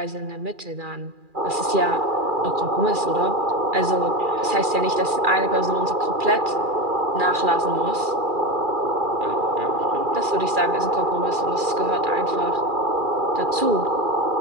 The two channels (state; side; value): late; left; 2.4 ms